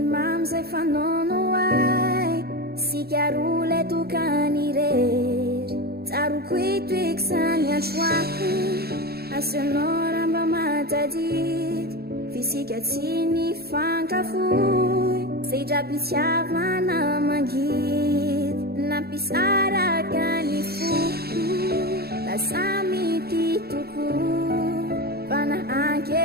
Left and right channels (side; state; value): left; late; 0.46 ms